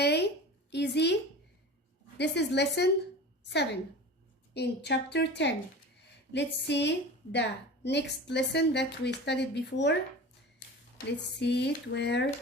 easy. This is lesson 7 in chapter 10. Let's see the next lesson that we studied before. Let's see it where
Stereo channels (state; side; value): normal; both; correlation 0.35